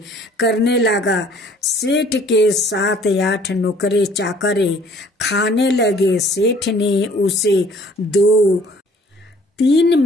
करने लगा। सेठ के 7-8 नौकरे चाकरे खाने लगे। सेठ ने उसे 2-3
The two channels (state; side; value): normal; both; correlation 0.56